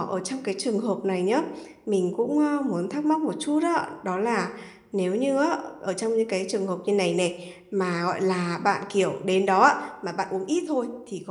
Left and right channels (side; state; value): both; identical; correlation 1.00